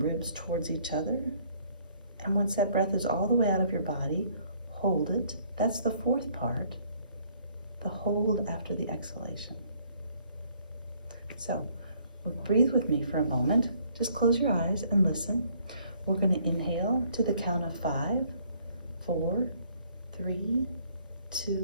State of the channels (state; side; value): inverted; both; correlation -0.63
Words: towards each other. And once that breath is all the way out of your body, hold it. That's the 4th part, the hold after the exhalation. So breathe with me for a moment. Just close your eyes and listen. We're going to inhale to the count of 5, 4, 3,